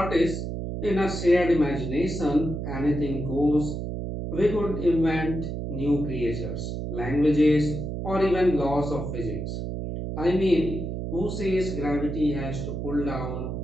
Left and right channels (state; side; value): noise; right; hum, 4 dB below the sound